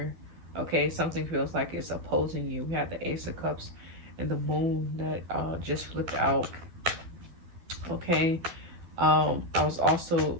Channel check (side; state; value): left; late; 12 ms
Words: Okay, something feels like it's opposing you. We have the Ace of Cups and the Moon that just flipped out. Okay, I was also